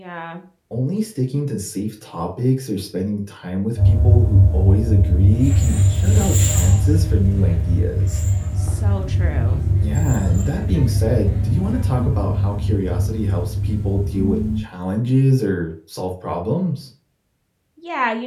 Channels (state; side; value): identical; both; correlation 1.00